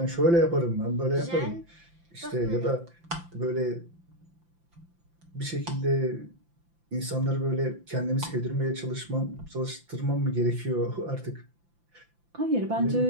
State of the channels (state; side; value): late; left; 5.8 ms